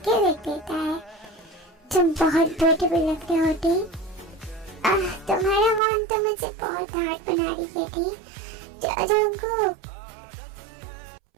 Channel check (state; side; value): drops out; left; at 5.8 s